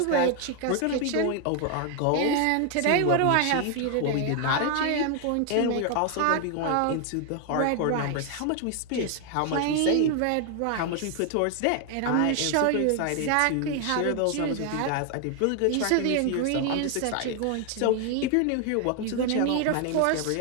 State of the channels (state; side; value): different; both; correlation 0.00